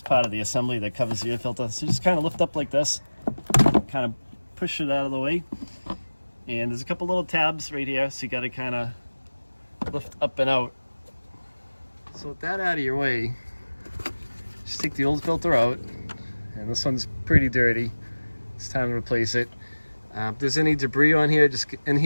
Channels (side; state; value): both; inverted; correlation -1.00